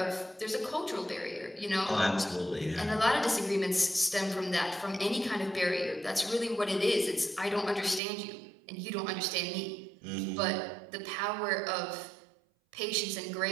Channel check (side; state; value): left; drops out; at 8.0 s